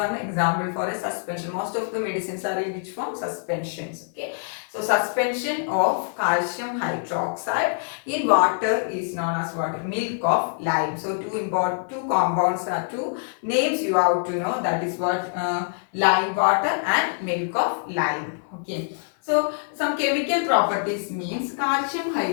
example for a suspension. Most of the medicines are in which form? Suspensions. Okay, so suspension of calcium hydroxide in water is known as what? Milk of lime. So two compounds are two names you have to know, that is what? Lime water and milk of lime. Okay, so some chemical properties means calcium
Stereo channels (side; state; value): right; silent; 62 dB below the other